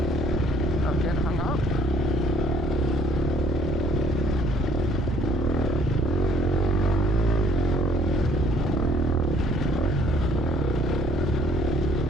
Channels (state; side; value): noise; right; rumble, 2 dB below the sound